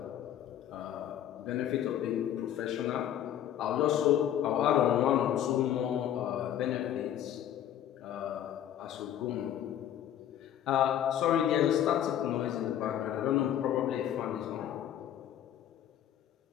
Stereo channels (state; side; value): quieter; right; 10.9 dB